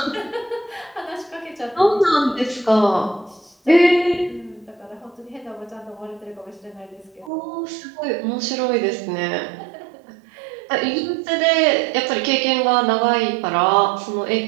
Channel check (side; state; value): left; drops out; at 7.3 s